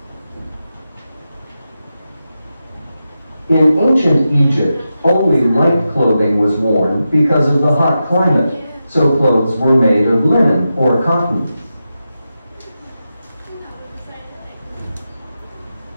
In ancient Egypt, only light clothing was worn because of the hot climate, so clothes were made of linen or cotton.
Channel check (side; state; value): both; inverted; correlation -0.90